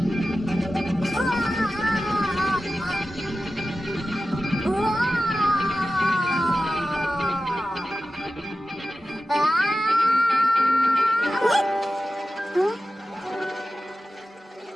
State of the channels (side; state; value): both; normal; correlation 0.94